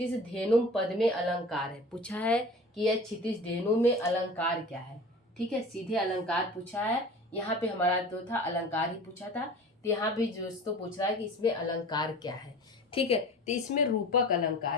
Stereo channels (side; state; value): both; normal; correlation 0.39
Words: धेनु पद में अलंकार है, पूछा है कि यह क्षितिज धेनु में अलंकार क्या है। ठीक है, सीधे अलंकार पूछा है, यहाँ पे हमारा तो था अलंकार ही पूछा था, तो यहाँ भी दोस्तों पूछ रहा है कि इसमें अलंकार क्या है। ठीक है, तो इसमें रूपक